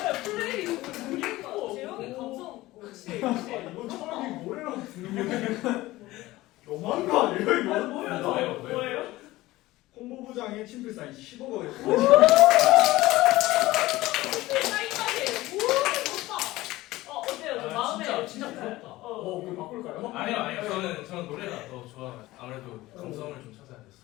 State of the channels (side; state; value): right; quieter; 18.0 dB